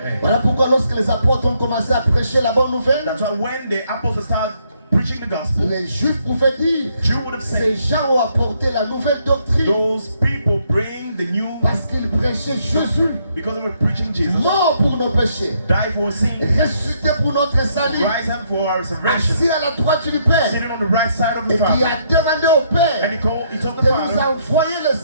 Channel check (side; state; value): both; inverted; correlation -0.72